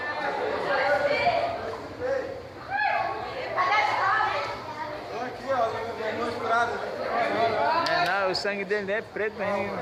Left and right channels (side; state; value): both; identical; correlation 1.00